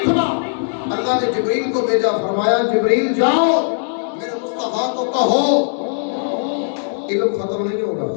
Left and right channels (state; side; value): silent; right; digital silence